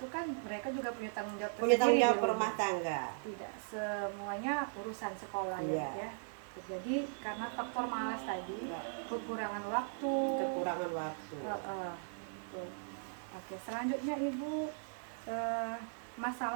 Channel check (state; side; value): silent; left; digital silence